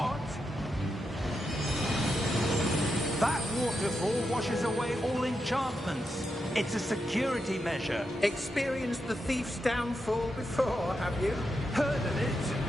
That waterfall washes away all enchantments. It's a security measure. Experienced the thief's downfall before, have you? Heard of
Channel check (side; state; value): both; normal; correlation 0.86